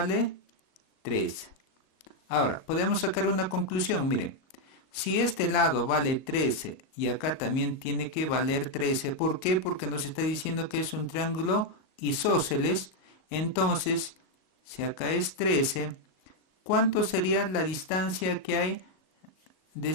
13. Ahora, podemos sacar una conclusión. Miren, si este lado vale 13 y acá también tiene que valer 13, ¿por qué? Porque nos está diciendo que es un triángulo isósceles. Entonces, si acá es 13, ¿cuánto sería la distancia que hay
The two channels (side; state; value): right; late; 38 ms